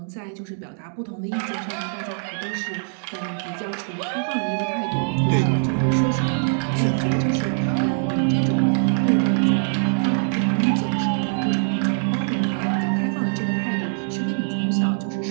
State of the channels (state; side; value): silent; left; digital silence